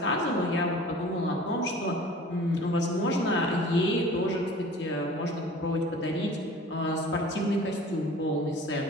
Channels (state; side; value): normal; both; correlation 0.44